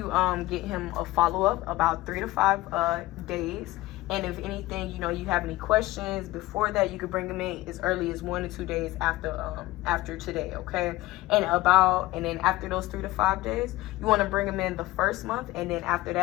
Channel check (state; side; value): quieter; right; 18.3 dB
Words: get him a follow-up about 3 to 5 days. And if anything, you know, you have any questions before that, you could bring them in as early as 1 to 2 days after today, okay? And then after those 3 to 5 days, you want to bring them in the first month, and then after